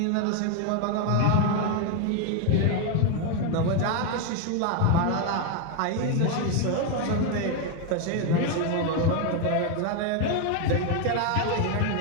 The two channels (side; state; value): both; different; correlation 0.01